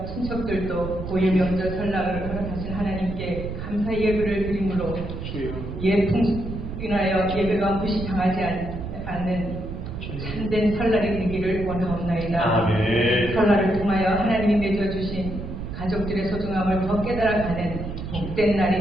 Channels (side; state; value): right; noise; rumble, 7 dB below the sound